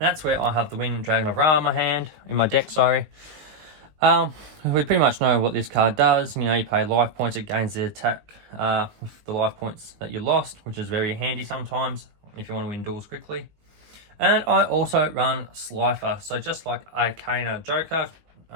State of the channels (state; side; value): late; left; 19 ms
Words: that's where I have the Wind Dragon of Ra in my deck, sorry. We pretty much know what this card does. You know, you pay life points, it gains the attack with the life points that you lost, which is very handy sometimes if you want to win duels quickly. And I also run Slifer. So just like Arcana Joker,